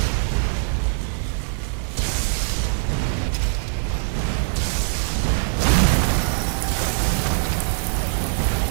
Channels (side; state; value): left; silent; digital silence